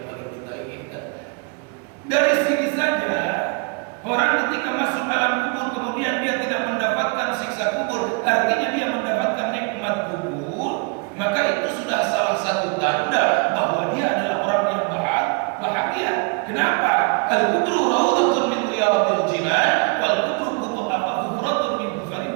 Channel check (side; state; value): left; quieter; 32.9 dB